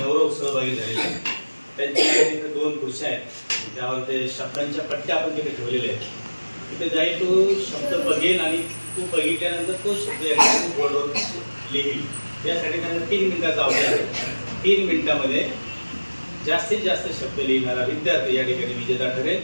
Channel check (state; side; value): inverted; both; correlation -1.00